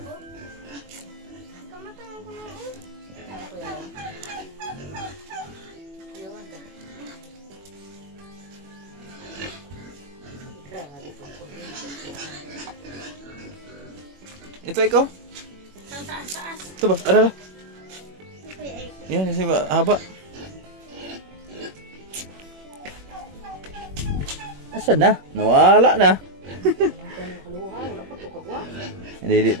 Ito ikaw? Taas. Ito ba? Ada. Yan, kasi haba. Asan na? Nawala na. Hindi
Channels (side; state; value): left; late; 21 ms